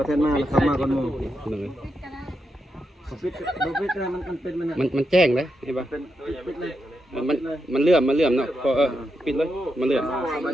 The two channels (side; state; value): both; normal; correlation 0.84